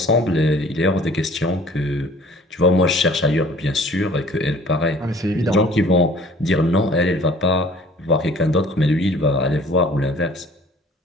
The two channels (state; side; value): normal; both; correlation 0.52